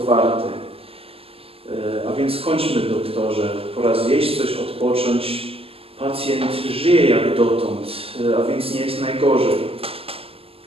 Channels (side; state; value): left; late; 0.28 ms